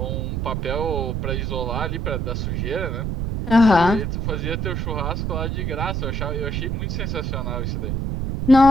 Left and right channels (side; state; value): right; noise; rumble, 1 dB below the sound